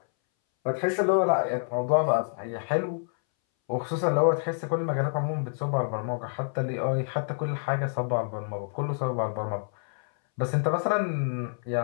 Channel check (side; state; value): right; silent; 59 dB below the other